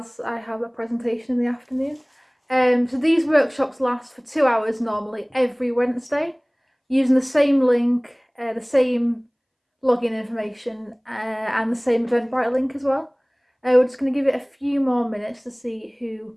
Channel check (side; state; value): both; identical; correlation 1.00